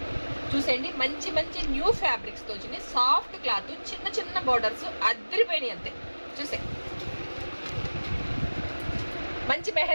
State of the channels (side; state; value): both; inverted; correlation -1.00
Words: చూసేయండి. మంచి మంచి న్యూ ఫ్యాబ్రిక్స్తో వచ్చినాయి. సాఫ్ట్ క్లాత్, చిన్న చిన్న బోర్డర్స్ అద్దరిపోయినాయి అంతే. చూసే మంచి